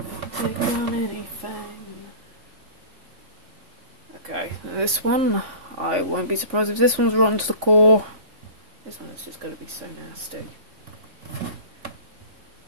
Take on anything. Okay, this one, I won't be surprised if this one's rotten to the core. This one is just going to be so nasty.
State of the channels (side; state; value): left; late; 3.5 ms